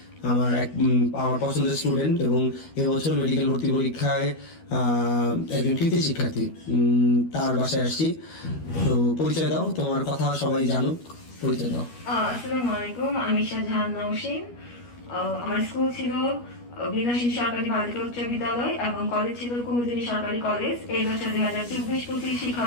আমার পছন্দের স্টুডেন্ট এবং এবছর মেডিকেল ভর্তি পরীক্ষায় একজন কৃতি শিক্ষার্থী, তার বাসায় আসছি। তো পরিচয় দাও, তোমার কথা সবাই জানুক, পরিচয় দাও। আসসালামু আলাইকুম, আমি শাহজাহান নওশিন। আমার স্কুল ছিল বিনাশী সরকারি বালিকা উচ্চ বিদ্যালয় এবং কলেজ ছিল কুমুদিনী সরকারি কলেজ। এই বছর 2024-25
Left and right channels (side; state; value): right; late; 12 ms